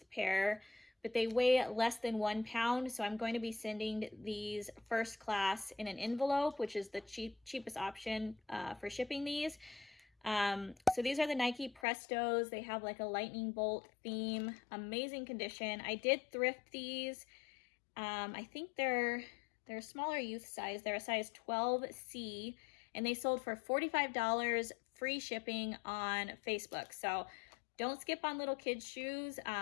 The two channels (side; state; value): right; drops out; at 11.9 s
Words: pair, but they weigh less than 1 pound. So I'm going to be sending these first class in an envelope, which is the cheapest option for shipping these. So these are the Nike Prestos. They have like a lightning bolt theme, amazing condition. I did thrift these. I think they're a smaller youth size. They're a size 12C and they sold for $45 free shipping on Facebook. So don't skip on little kids shoes.